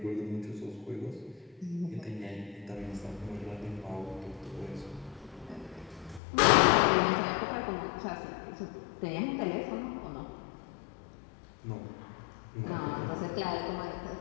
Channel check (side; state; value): right; drops out; at 6.2 s